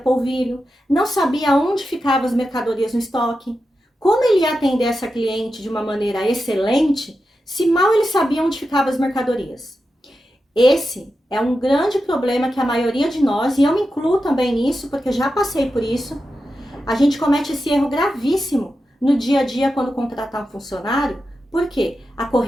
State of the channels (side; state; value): both; normal; correlation 0.90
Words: não sabia onde ficavam as mercadorias no estoque. Como ele ia atender essa cliente de uma maneira excelente, se mal ele sabia onde ficavam as mercadorias? Esse é um grande problema que a maioria de nós, e eu me incluo também nisso, porque já passei por isso, a gente comete esse erro gravíssimo no dia a dia quando contratar um funcionário, porque a